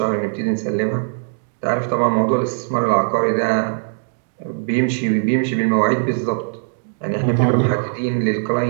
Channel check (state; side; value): silent; left; 66 dB below the other